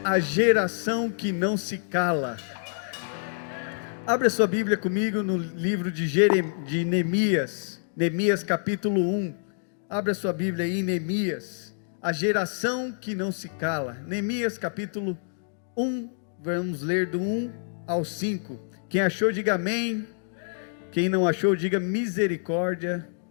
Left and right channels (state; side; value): silent; right; digital silence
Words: a geração que não se cala. Abra sua Bíblia comigo no livro de Neemias, Neemias capítulo 1. Abra sua Bíblia aí em Neemias, a geração que não se cala. Neemias capítulo 1, vamos ler do 1 ao 5. Quem achou, diga amém. Quem não achou, diga misericórdia.